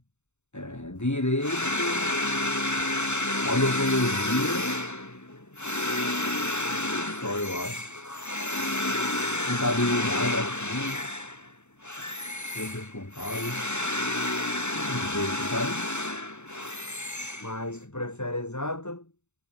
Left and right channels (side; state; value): right; late; 0.82 ms